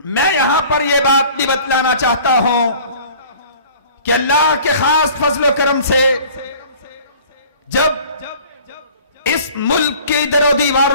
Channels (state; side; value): inverted; both; correlation -0.48